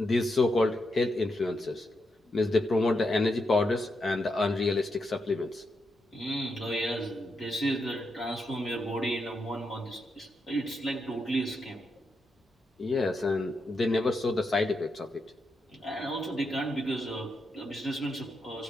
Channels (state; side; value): normal; both; correlation 0.83